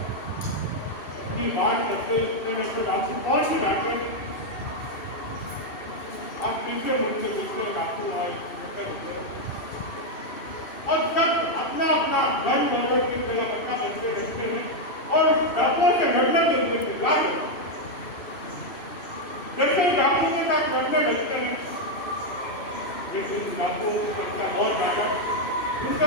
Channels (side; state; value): right; late; 2.7 ms